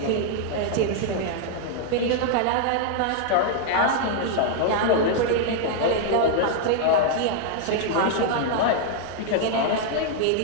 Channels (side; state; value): both; different; correlation 0.00